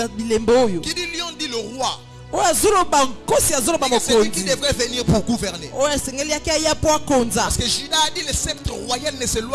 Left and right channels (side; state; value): both; identical; correlation 1.00